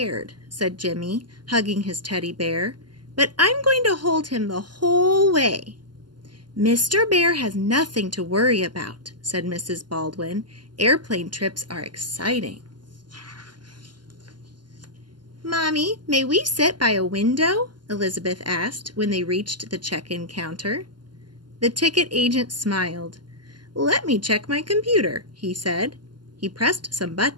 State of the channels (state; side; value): late; left; 0.71 ms